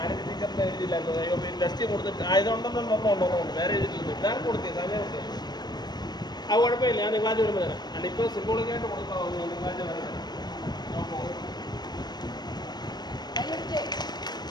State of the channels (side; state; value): right; late; 0.20 ms